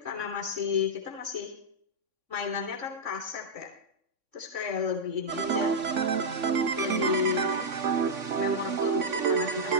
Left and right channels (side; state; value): left; late; 3.6 ms